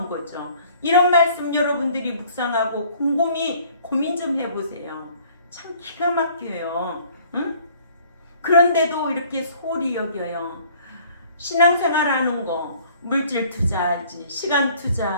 거죠. 이런 말씀 여러분들이 묵상하고 곰곰이 고민 좀 해보세요. 참 기가 막혀요. 응? 그런데도 이렇게 소홀히 여겨요. 신앙생활하는 거 물질 투자하지, 시간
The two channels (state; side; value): inverted; both; correlation -0.55